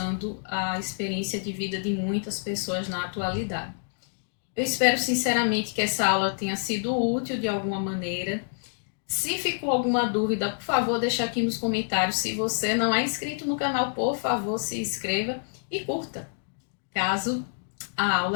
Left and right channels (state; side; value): silent; right; digital silence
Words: a experiência de vida de muitas pessoas na atualidade. Eu espero sinceramente que essa aula tenha sido útil de alguma maneira. Se ficou alguma dúvida, por favor, deixa aqui nos comentários. Se você não é inscrito no canal, por favor, se inscreva e curta, caso a